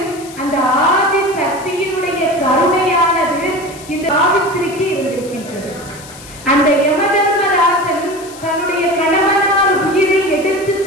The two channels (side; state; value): left; noise; hiss, 18 dB below the sound